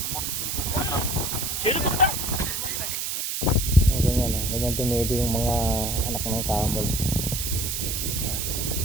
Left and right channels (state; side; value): noise; right; hiss, 2 dB below the sound